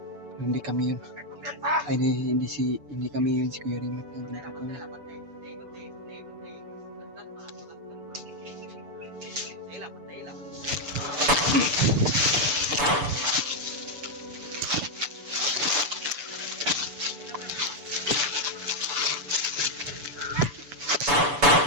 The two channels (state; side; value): late; left; 6.9 ms